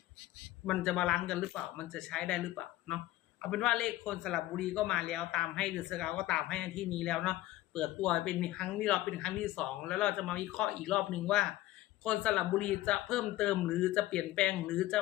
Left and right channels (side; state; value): right; quieter; 15.9 dB